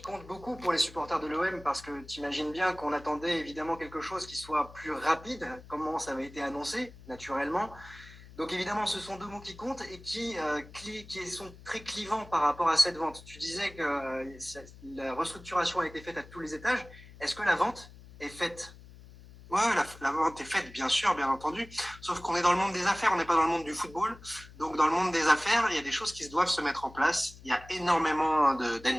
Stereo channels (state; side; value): noise; left; hum, 19 dB below the sound